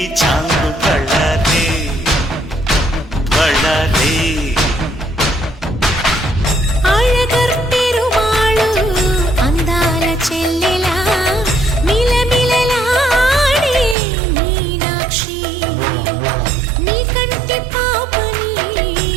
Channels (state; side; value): drops out; left; at 14.0 s